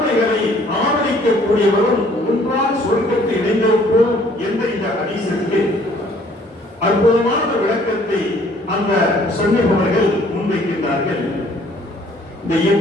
ஆதரிக்கக்கூடியவரும் ஒன்றாக சொர்க்கத்தை இணைந்திருப்போம் என்ற இந்த ஹதீஸுக்கு அற்புதமான விளக்கத்தை அந்த சொன்னவர்கள் முன்வைக்கின்றார்கள். இந்த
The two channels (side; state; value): both; normal; correlation 0.59